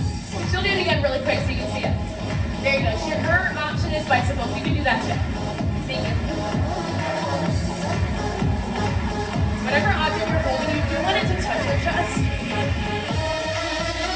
She'll do it again really quick so you can see it. There you go. Her option is bicycles. You can do that too. Thank you. Whatever object you're holding, you do want it to touch your chest.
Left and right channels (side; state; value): both; identical; correlation 1.00